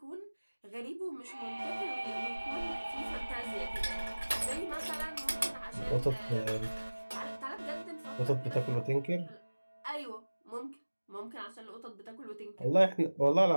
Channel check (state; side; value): inverted; both; correlation -1.00